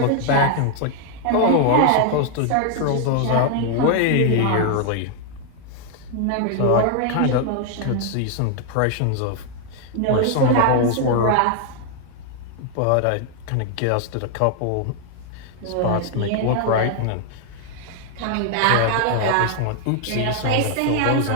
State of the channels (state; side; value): different; both; correlation 0.00